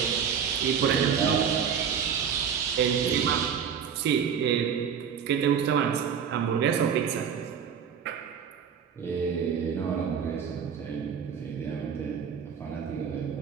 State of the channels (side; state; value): left; quieter; 7.4 dB